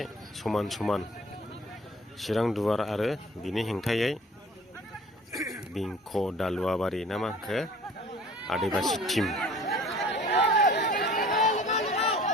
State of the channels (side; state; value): both; normal; correlation 0.48